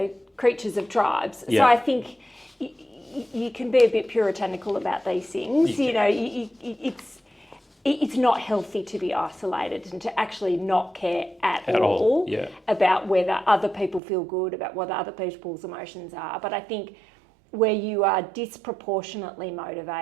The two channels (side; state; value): left; drops out; at 14.0 s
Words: creatures of tribes. Yeah. So I think you can be a bit puritanical about these things. It's not healthy to be isolated and to actually not care at all about whether other people feel good, about what other people's emotions are. But I think where you are disproportionately